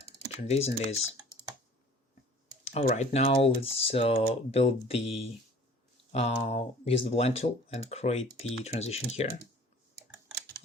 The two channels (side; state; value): both; normal; correlation 0.48